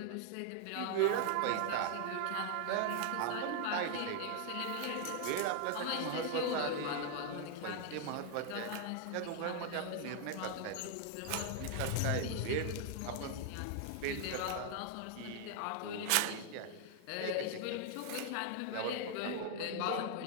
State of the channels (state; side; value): different; both; correlation 0.00